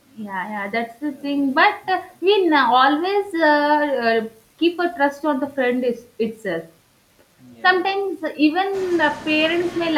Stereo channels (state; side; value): identical; both; correlation 1.00